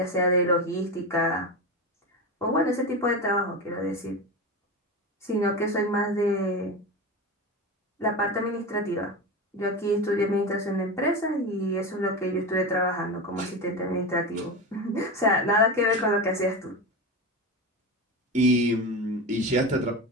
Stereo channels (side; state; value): both; normal; correlation 0.22